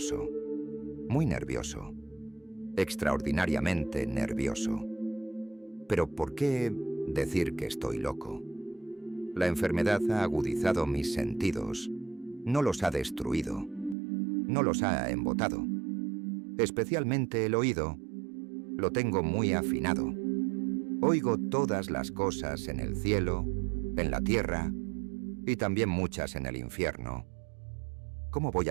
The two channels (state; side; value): drops out; left; at 14.0 s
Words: Muy nervioso. Extraordinariamente nervioso. Pero ¿por qué decir que estoy loco? La enfermedad ha agudizado mis sentidos, no los ha destruido, no los ha embotado. Especialmente el oído, lo tengo muy afinado. Oigo todas las cosas en el cielo, en la tierra y también muchas en el infierno. ¿Cómo voy